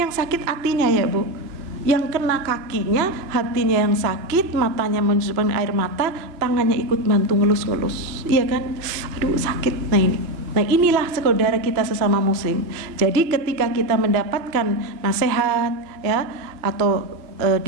sakit hatinya, ya, Bu. Yang kena kakinya, hatinya yang sakit, matanya menusukkan air mata, tangannya ikut bantu ngelus-ngelus, iya kan? Aduh, sakit. Nah inilah saudara kita sesama muslim. Jadi ketika kita mendapatkan nasihat, ya, atau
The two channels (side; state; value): left; late; 2.9 ms